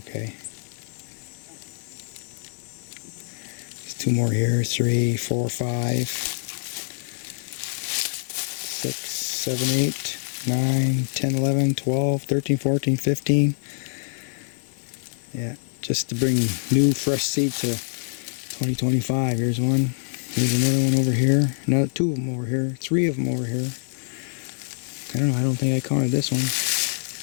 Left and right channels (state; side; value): silent; right; digital silence